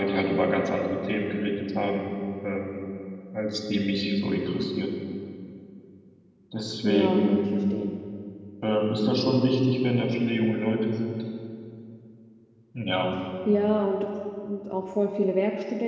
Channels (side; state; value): both; identical; correlation 1.00